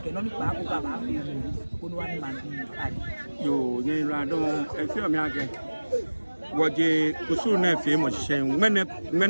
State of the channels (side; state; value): both; inverted; correlation -1.00